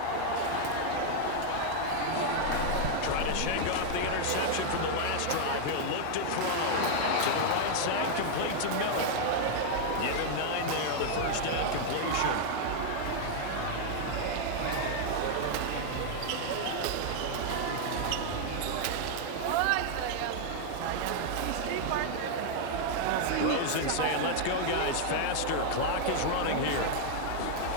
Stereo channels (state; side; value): different; both; correlation 0.00